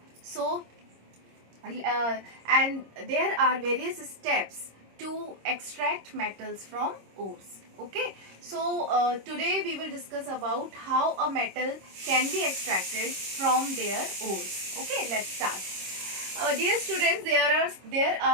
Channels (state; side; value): late; left; 26 ms